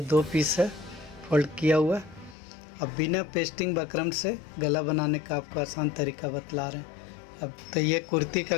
2 पीस है फोल्ड किया हुआ। अब बिना पेस्टिंग बकरम से गला बनाने का आपको आसान तरीका बतला रहे हैं। अब तो ये कुर्ती का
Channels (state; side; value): drops out; right; at 2.4 s